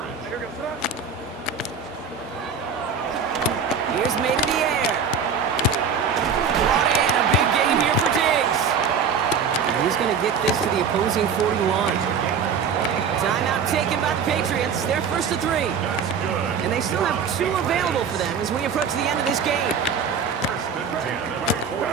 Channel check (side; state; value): left; quieter; 6.2 dB